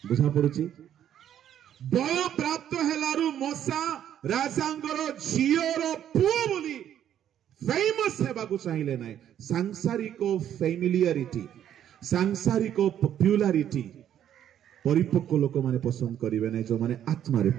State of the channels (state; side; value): quieter; left; 10.3 dB